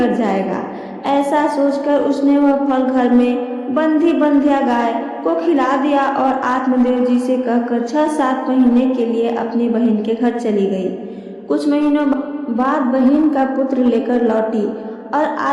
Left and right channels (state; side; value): identical; both; correlation 1.00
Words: जाएगा। ऐसा सोचकर उसने वह फल घर में बंधी बंध्या गाय को खिला दिया और आत्मदेव जी से कहकर 6-7 महीने के लिए अपनी बहन के घर चली गई। कुछ महीनों बाद बहन का पुत्र लेकर लौटी और